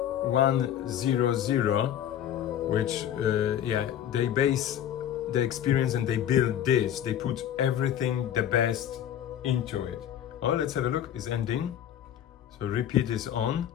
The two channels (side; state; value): right; quieter; 10.3 dB